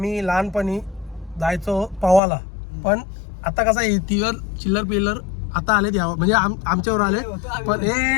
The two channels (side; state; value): right; drops out; at 2.2 s